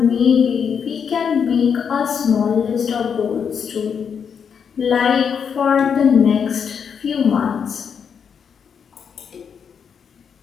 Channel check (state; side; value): quieter; right; 7.0 dB